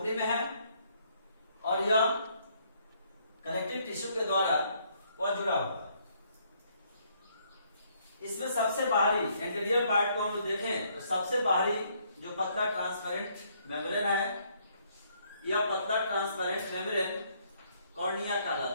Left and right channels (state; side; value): inverted; both; correlation -0.69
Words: में है और यह कनेक्टिव टिश्यू के द्वारा वह जुड़ा हुआ है। इसमें सबसे बाहरी इंटीरियर पार्ट को हम लोग देखें तो सबसे बाहरी जो पतला ट्रांसपेरेंट मेम्ब्रेन है, यह पतला ट्रांसपेरेंट मेम्ब्रेन कॉर्निया